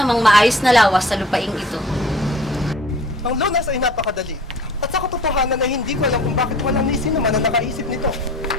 mang maayos na lawas sa lupaing ito. Ang lunas ay napakadali. At sa katotohanan ay hindi ko alam kung bakit walang ni sino man ang nakaisip nito.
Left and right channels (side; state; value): both; normal; correlation 0.48